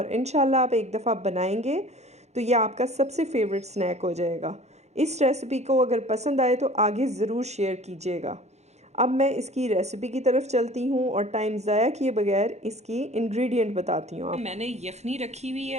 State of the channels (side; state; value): left; late; 0.32 ms